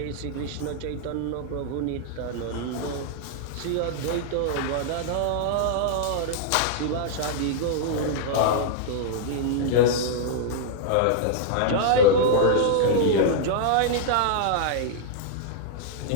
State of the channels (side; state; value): both; different; correlation -0.01